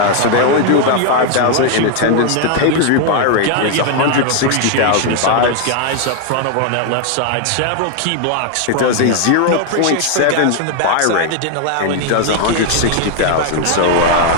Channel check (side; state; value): both; different; correlation 0.00